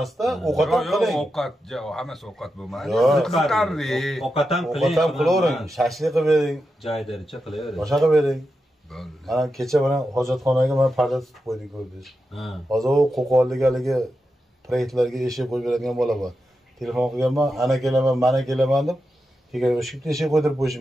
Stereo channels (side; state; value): both; normal; correlation 0.89